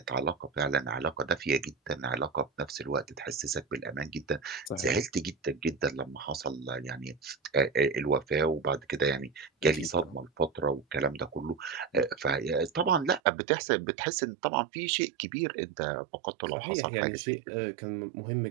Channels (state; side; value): drops out; left; at 13.2 s